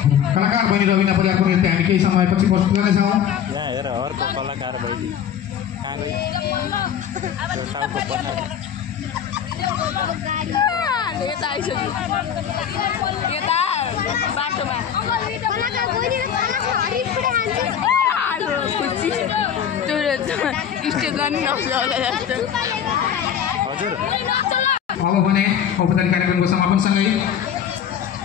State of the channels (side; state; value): right; quieter; 8.8 dB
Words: कलाकार बहिनी रबिना परियारको नृत्य हामी केही समयपछि प्रस्तुत गर्नेछौँ। यहाँ हेर अर्को कलाकार बहिनी कहाँ गई त्यो टाउको पछाडि यता आइसक्यो यता बाटोमा खुसी त्यो स्टेज पनि नक्छ होला जस्तो। हजुर अब भने औपचारिक कार्यक्रमको समापनसँगै